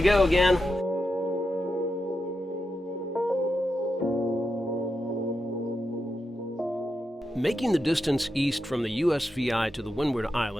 go again. Making the distance east from the USVI to the Windward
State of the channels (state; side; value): normal; both; correlation 0.87